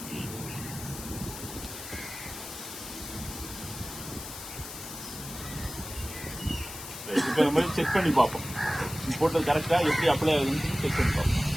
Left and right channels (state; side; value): noise; left; hiss, 10 dB below the sound